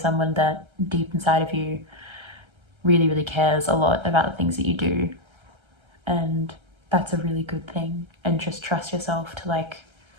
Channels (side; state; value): left; late; 1.3 ms